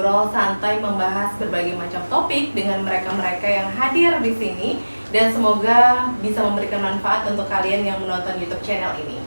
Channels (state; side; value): inverted; both; correlation -1.00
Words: santai membahas berbagai macam topik dengan mereka-mereka yang hadir di sini, dan semoga bisa memberikan manfaat untuk kalian yang menonton YouTube channel ini.